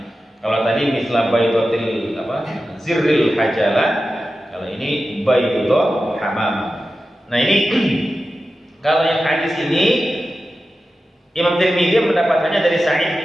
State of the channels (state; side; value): normal; both; correlation 0.93